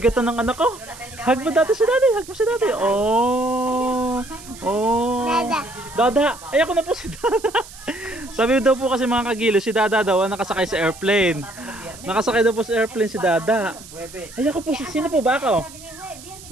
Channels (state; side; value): noise; right; hiss, 18 dB below the sound